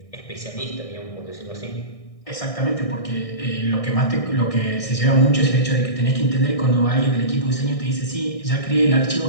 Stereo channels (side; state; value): right; late; 1.6 ms